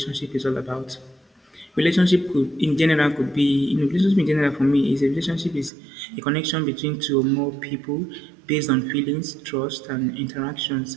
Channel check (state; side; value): drops out; left; at 5.7 s